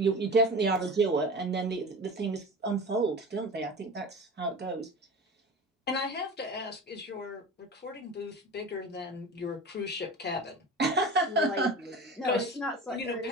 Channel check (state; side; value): normal; both; correlation 0.33